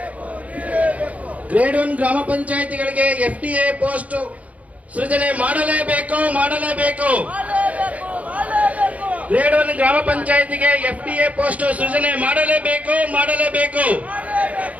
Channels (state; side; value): late; left; 0.067 ms